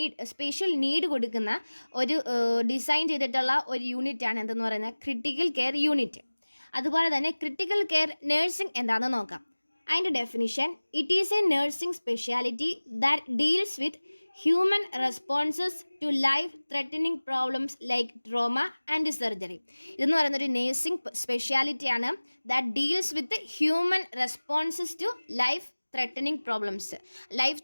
സ്പെഷ്യൽ നീഡ് കൊടുക്കുന്ന ഒരു ഡിസൈൻ ചെയ്തിട്ടുള്ള ഒരു യൂണിറ്റാണ് എന്തെന്ന് പറയുന്നത് ക്രിട്ടിക്കൽ കെയർ യൂണിറ്റ്. അതുപോലെ തന്നെ ക്രിട്ടിക്കൽ കെയർ നഴ്സിംഗ് എന്താണെന്ന് നോക്കാം. അതിൻ്റെ definition: it is a nursing speciality that deals with human responses to life threatening problems like trauma and surgery. ഇതെന്ന് പറയുന്ന ഒരു നേഴ്സിംഗ് സ്പെഷ്യാലിറ്റിയാണ് that deals with human responses to life threatening problems. Life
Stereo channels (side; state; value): both; inverted; correlation -1.00